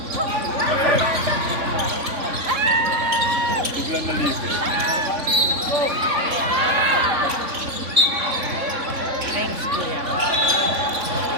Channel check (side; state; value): left; late; 3.5 ms